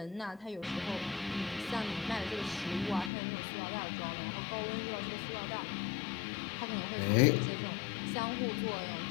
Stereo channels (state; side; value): drops out; right; at 3.1 s